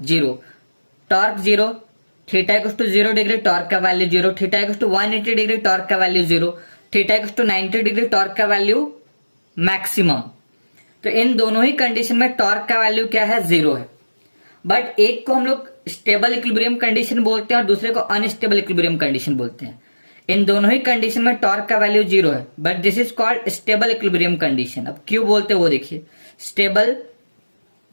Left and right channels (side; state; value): both; inverted; correlation -1.00